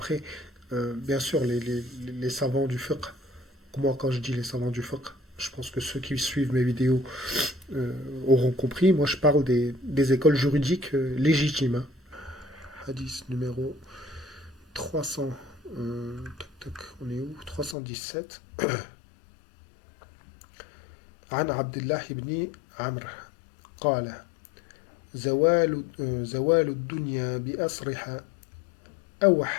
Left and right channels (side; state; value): right; drops out; at 17.8 s